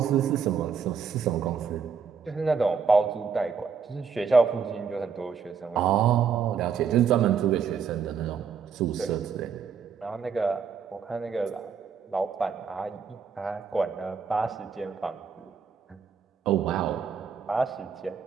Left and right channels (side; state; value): left; quieter; 6.3 dB